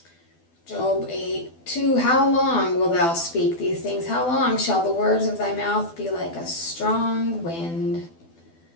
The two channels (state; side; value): late; right; 12 ms